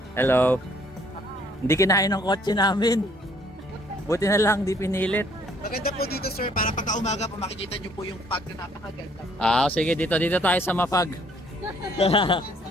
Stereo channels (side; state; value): both; normal; correlation 0.63